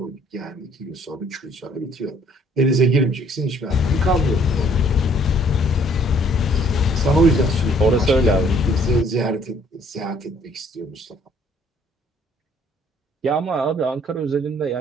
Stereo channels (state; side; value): normal; both; correlation 0.61